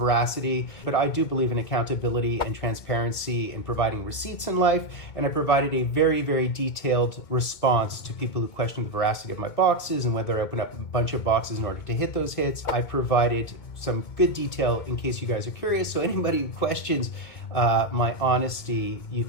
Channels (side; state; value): right; late; 2.1 ms